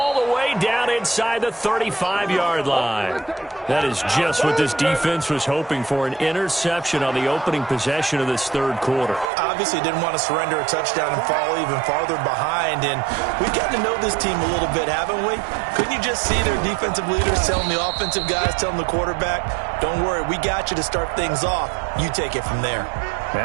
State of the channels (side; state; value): left; drops out; at 9.3 s